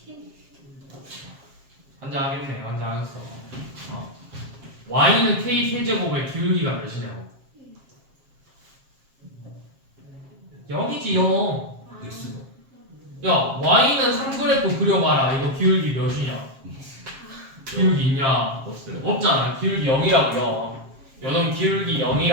환장하겠네. 환장하겠어. y는 k 세제곱의 기울기가 몇이냐고? 0이지 0. x가 야, y는 3그래프 그려봐라. 이거 기울기 몇이냐? 기울기 있냐? 없어요. 없잖아. 기울기 0이라고요. 요놈 기울기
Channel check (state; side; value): late; left; 7.5 ms